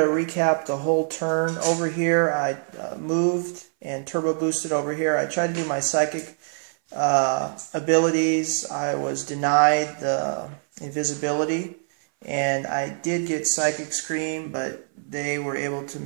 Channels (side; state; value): left; silent; 59 dB below the other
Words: recap the whole turn. Over here, I moved and turbo boosted over here. I tried to do my psychic abilities. I was denied the invisibility, and I did get Psychic Scream, but they were able to